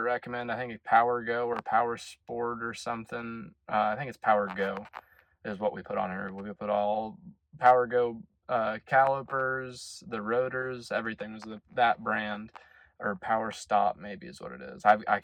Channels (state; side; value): identical; both; correlation 1.00